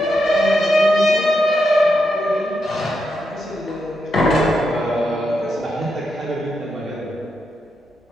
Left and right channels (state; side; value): normal; both; correlation 0.84